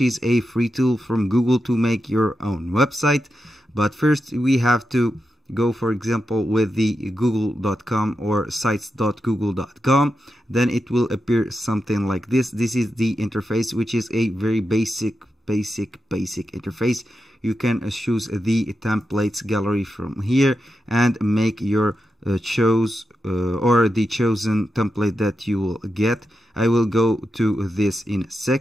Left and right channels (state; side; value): normal; both; correlation 0.88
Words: a free tool from Google to make your own website. But first we have to go, for example, with the google.com or sites.google.com. Then it will appear something like this. This is the interface, which is a very basic interface. You can choose the templates gallery from here and make your choose or the chosen template that you will get. I will go to this in a